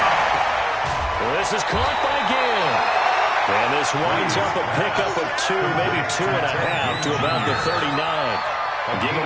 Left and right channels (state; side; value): identical; both; correlation 1.00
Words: This is caught by Gill. And this winds up a pickup of 2, maybe 2.5 to about the 39. I'll give him